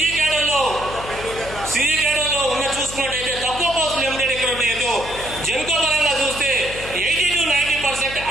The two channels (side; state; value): left; noise; hum, 13 dB below the sound